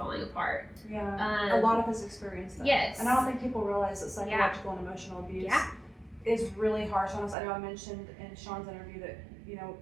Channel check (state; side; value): drops out; left; at 7.4 s